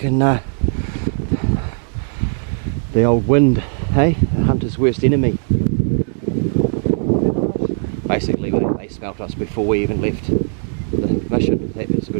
the old wind, hey? The hunter's worst enemy. Basically, they smelt us before we even left the mission. That was a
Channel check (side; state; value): left; silent; digital silence